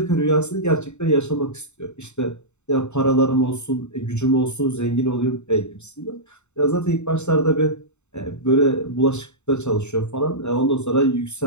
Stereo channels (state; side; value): late; right; 0.82 ms